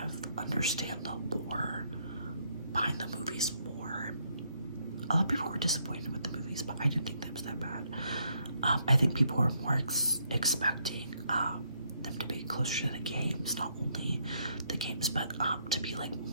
understand the lore behind the movies more. A lot of people were disappointed with the movies, but I didn't think that was that bad. I think people were more expecting them to be closer to the games, not only the games, but to be like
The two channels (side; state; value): both; inverted; correlation -0.73